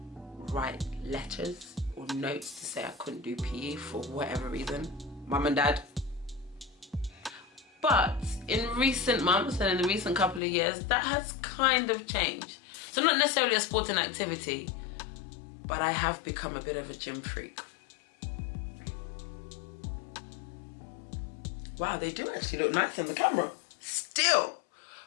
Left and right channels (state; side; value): drops out; right; at 10.4 s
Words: write letters or notes to say I couldn't do PE for whatever reason. Mum and dad. But in recent months and in the recent couple of years, that has kind of changed. So not necessarily a sporting activity, but I have become a bit of a gym freak. Wow, they do actually look nice on the camera. Still.